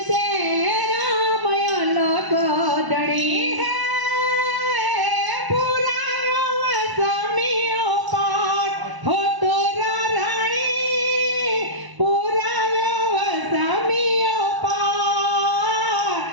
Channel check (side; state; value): left; late; 1.0 ms